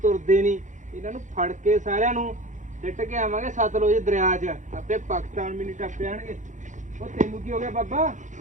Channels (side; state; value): left; late; 0.36 ms